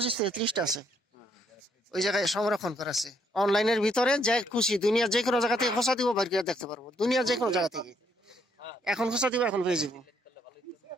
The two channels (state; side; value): normal; both; correlation 0.71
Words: থেকে 30টা আছে ওই জায়গায় সংরক্ষণ করা আছে। অনলাইনের ভিতরে যে খুশি দুনিয়ার যে কোনো জায়গা থেকে খোঁচা দিব, বাইরে করে দেখতে পারবো, দুনিয়ার যে কোনো জায়গা থেকে। এখন খোঁচা দিব, এখন পেয়ে যাবো।